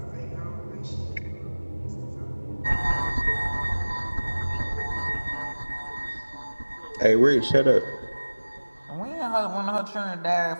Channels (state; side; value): inverted; both; correlation -1.00